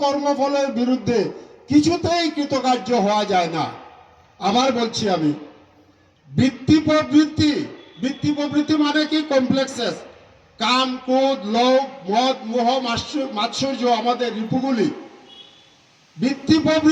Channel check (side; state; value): both; identical; correlation 1.00